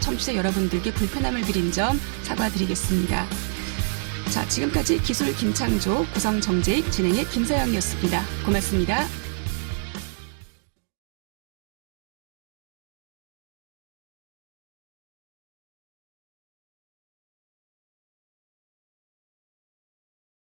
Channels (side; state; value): left; silent; digital silence